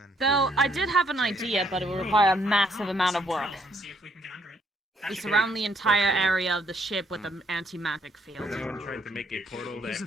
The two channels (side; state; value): both; normal; correlation 0.70